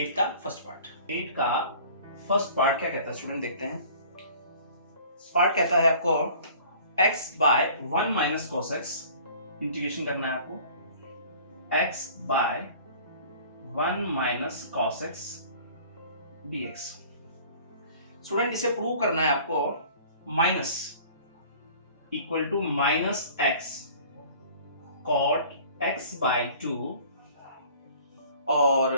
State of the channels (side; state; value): both; inverted; correlation -0.48